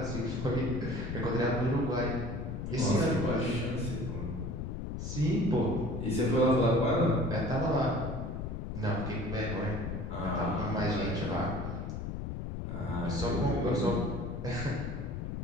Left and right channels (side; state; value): left; noise; rumble, 5 dB below the sound